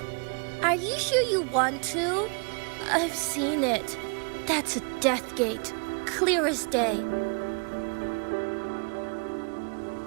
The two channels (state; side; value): quieter; left; 36.0 dB